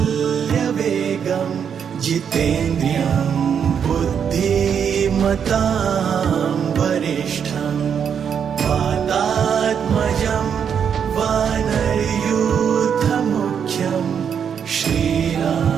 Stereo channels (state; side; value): quieter; left; 7.6 dB